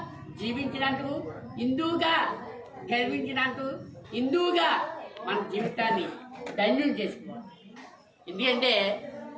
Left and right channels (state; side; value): identical; both; correlation 1.00